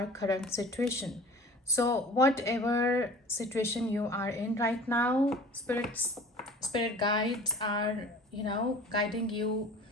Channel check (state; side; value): normal; both; correlation 0.43